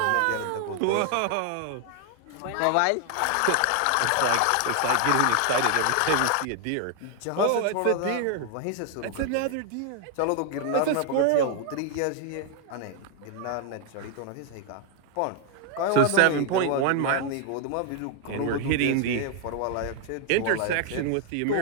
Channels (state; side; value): different; both; correlation 0.00